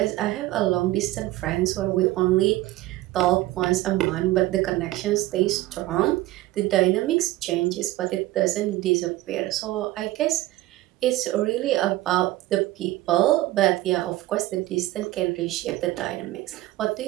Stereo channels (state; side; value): quieter; left; 16.9 dB